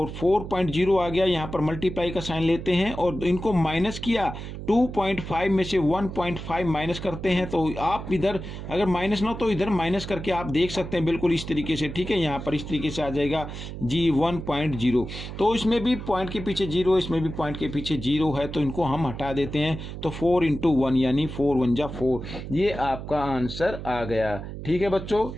4.0 आ गया। यहाँ पर मल्टीप्लाई का साइन लेते हैं और इनको माइनस किया, 2.5 में से 1.5 माइनस करते हैं। तो आप इधर अगर माइनस ना हो तो इधर माइनस करके आप देख सकते हैं बिल्कुल इस तरीके से, ठीक है। यहाँ पर इस तरीके से आ जाएगा जी 1.0। तो इसमें भी पॉइंट के पीछे 0, इसमें भी पॉइंट के पीछे 0 है, तो इनको हम हटा देते हैं। तो 4 × 1 यानी 4 × 1 = 4, ये आपका आंसर आ गया। ठीक है बच्चों,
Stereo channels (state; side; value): noise; right; hum, 9 dB below the sound